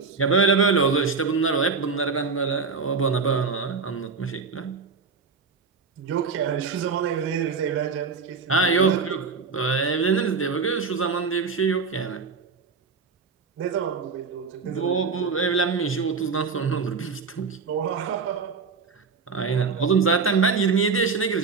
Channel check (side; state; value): left; quieter; 4.9 dB